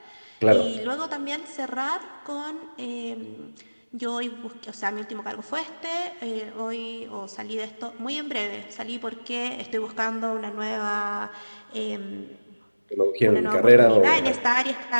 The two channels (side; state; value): both; inverted; correlation -1.00